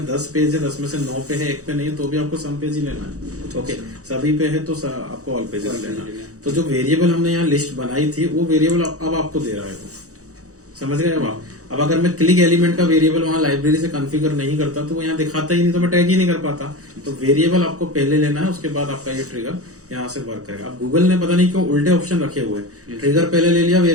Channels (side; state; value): left; late; 0.65 ms